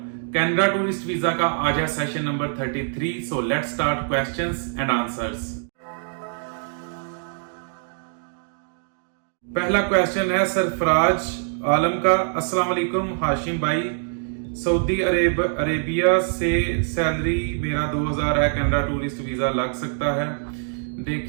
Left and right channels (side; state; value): left; silent; digital silence